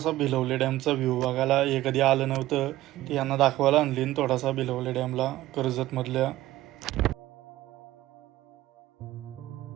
भिलवले डॅमचा व्ह्यू बघायला. हे कधी आलं नव्हतं ते यांना दाखवायला आणली थोडासा भिलवले डॅमला कर्जतमधल्या.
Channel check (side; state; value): left; quieter; 15.6 dB